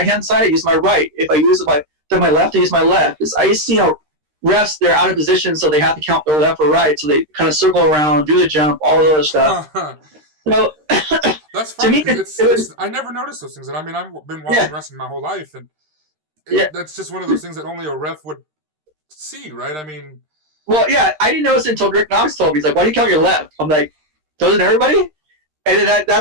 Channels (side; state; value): left; late; 13 ms